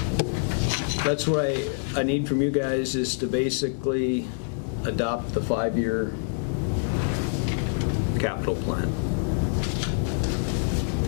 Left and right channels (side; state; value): right; silent; digital silence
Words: that's what I need from you guys, is to basically adopt the 5-year capital plan.